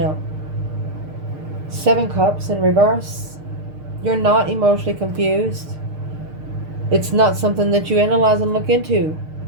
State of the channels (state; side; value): late; left; 6.6 ms